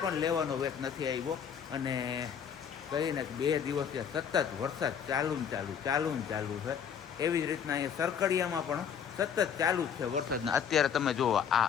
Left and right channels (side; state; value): right; quieter; 7.8 dB